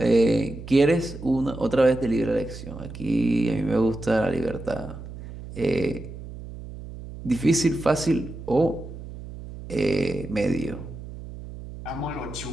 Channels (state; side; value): noise; right; hum, 12 dB below the sound